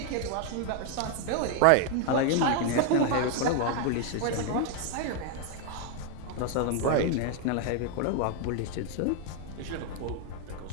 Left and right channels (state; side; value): different; both; correlation 0.01